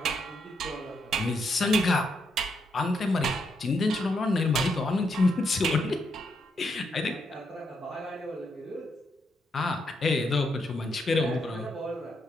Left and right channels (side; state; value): both; normal; correlation 0.79